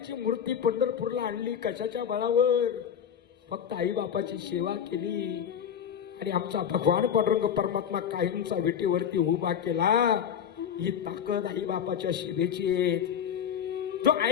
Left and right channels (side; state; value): right; quieter; 8.4 dB